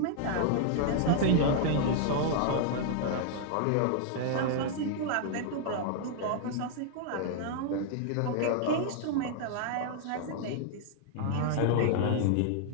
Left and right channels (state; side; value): different; both; correlation -0.01